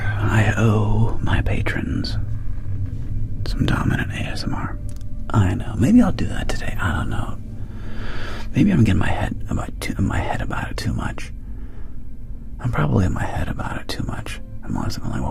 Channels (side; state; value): both; identical; correlation 1.00